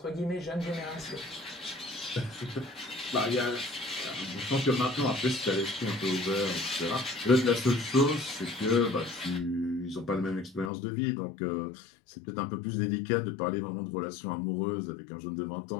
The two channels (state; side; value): drops out; right; at 10.7 s